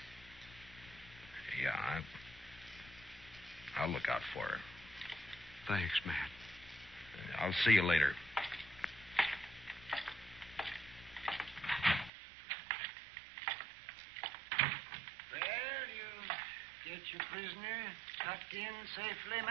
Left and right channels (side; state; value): left; drops out; at 12.1 s